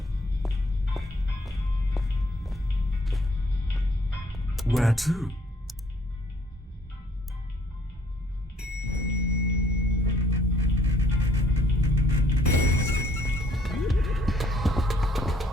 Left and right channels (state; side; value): normal; both; correlation 0.63